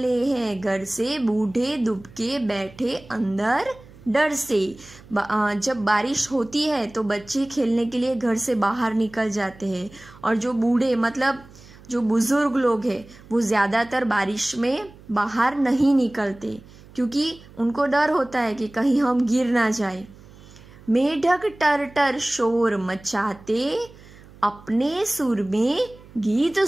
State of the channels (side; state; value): right; noise; hum, 22 dB below the sound